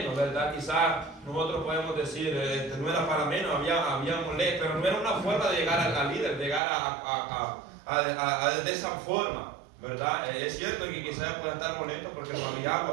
¿verdad? Quizás nosotros podemos decir, no era para menos, había molesto, pero no era una forma de llegar al líder, llegar de esa forma, ¿verdad? Es cierto que quizás pueden estar molestos porque no había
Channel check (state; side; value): drops out; left; at 6.6 s